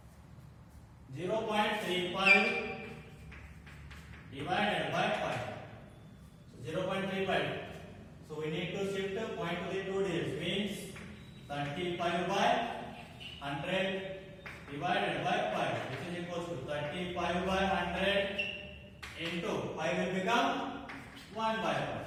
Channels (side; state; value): both; identical; correlation 1.00